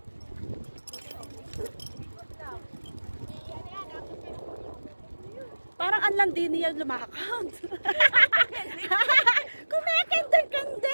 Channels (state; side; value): inverted; both; correlation -1.00